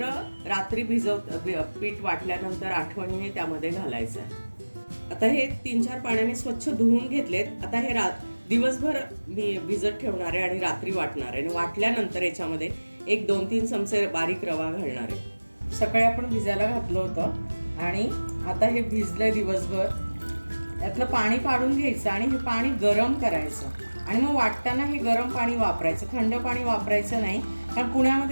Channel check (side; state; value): both; inverted; correlation -1.00